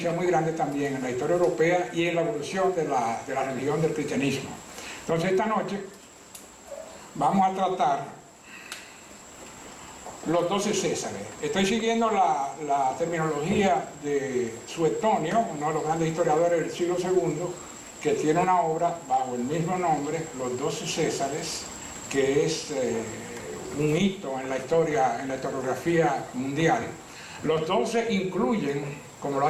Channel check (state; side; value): identical; both; correlation 1.00